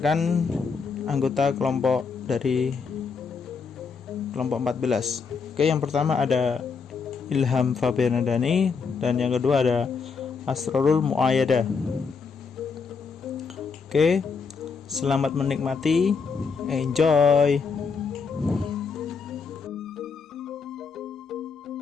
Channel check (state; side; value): quieter; right; 5.3 dB